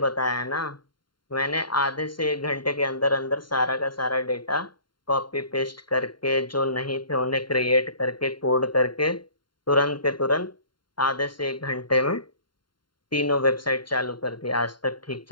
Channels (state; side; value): late; right; 0.72 ms